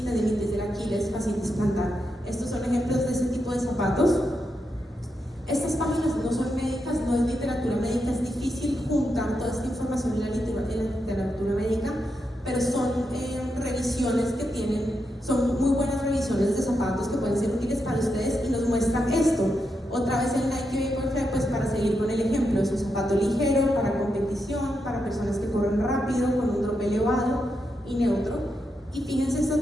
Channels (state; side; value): normal; both; correlation 0.84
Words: tendinitis del Aquiles, fascitis plantar. Estos son ejemplos de ese tipo de zapatos. Estas páginas no son médicas, no es literatura médica, es difícil juntar toda esta información en ligero, para competición, para personas que corren rápido, con un drop elevado y neutro. Y fíjense, este